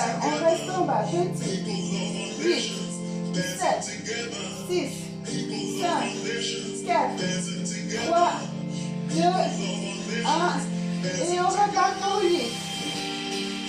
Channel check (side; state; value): both; identical; correlation 1.00